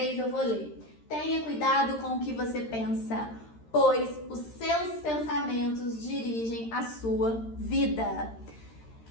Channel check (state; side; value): late; right; 13 ms